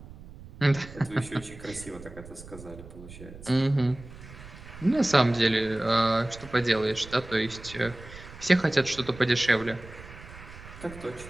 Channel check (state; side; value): noise; right; rumble, 16 dB below the sound